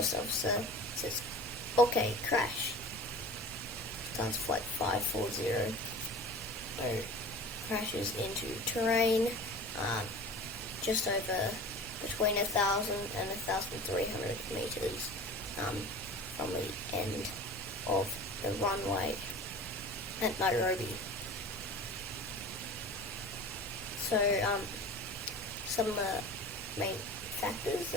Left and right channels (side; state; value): both; normal; correlation 0.38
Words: officer says, "Okay, crash." Lufthansa Flight 540 crashes into terrain just over between 1,000 and 1,300 meters from the end of the runway at Nairobi. So some of the main factors,